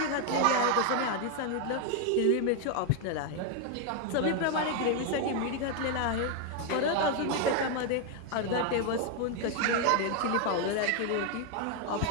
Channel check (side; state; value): both; different; correlation 0.01